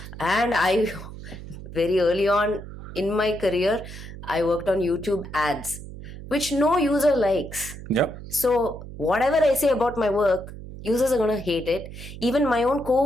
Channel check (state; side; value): noise; right; hum, 13 dB below the sound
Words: And I, very early on in my career, I worked on YouTube ads, which no user likes. Yep. So whatever I say about my work, users are going to hate it. Even my own